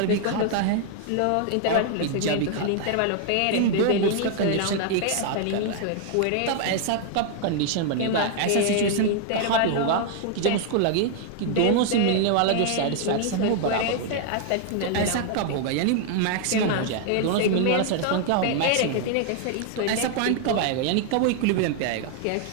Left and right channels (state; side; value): different; both; correlation 0.00